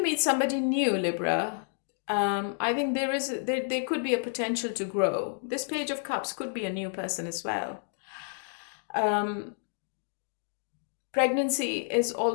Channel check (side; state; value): right; silent; digital silence